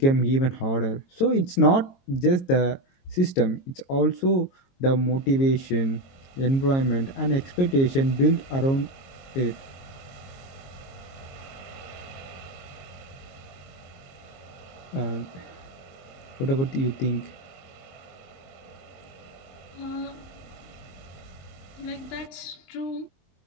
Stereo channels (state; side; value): late; right; 22 ms